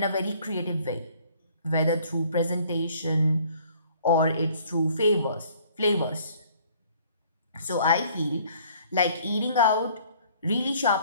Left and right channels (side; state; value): both; inverted; correlation -0.57